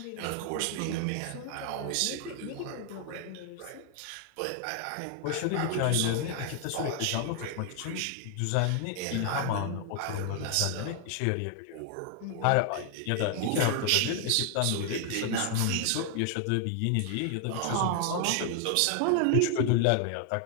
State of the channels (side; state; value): both; different; correlation 0.00